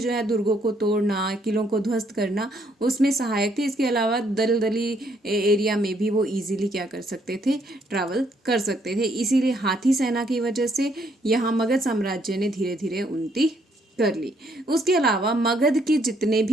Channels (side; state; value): both; normal; correlation 0.70